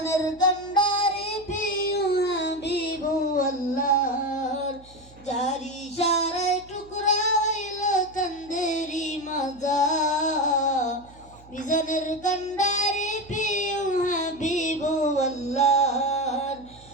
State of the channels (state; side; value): noise; right; hum, 23 dB below the sound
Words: কান্ডারি প্রিয় হাবিবু আল্লাহর যার ইশারায় টুকরা হইল চাঁদেরি মাজা মিশনের কান্ডারি প্রিয় হাবিবু আল্লাহর